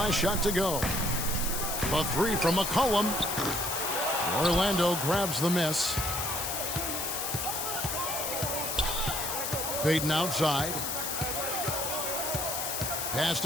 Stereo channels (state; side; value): noise; left; hiss, 2 dB below the sound